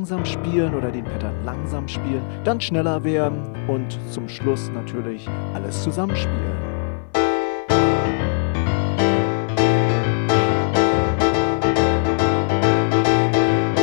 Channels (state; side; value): silent; right; digital silence